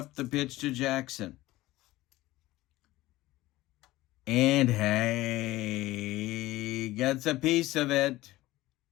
the pitch to Jackson. And hey, gets a piece of it.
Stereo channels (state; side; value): quieter; right; 17.6 dB